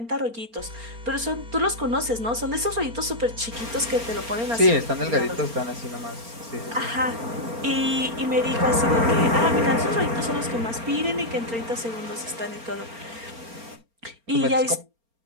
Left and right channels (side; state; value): left; late; 4.3 ms